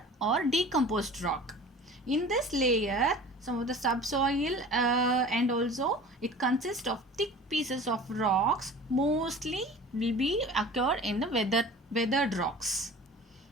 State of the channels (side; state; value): both; normal; correlation 0.42